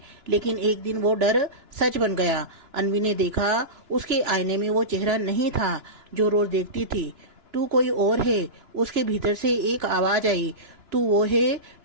लेकिन एक दिन वो डर सच बन गया। अन्वी ने देखा उसके आईने में वो चेहरा नहीं था जो रोज देखती थी। तू कोई और है। उसके भीतर से एक आवाज आई, तू वो है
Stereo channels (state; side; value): late; left; 2.9 ms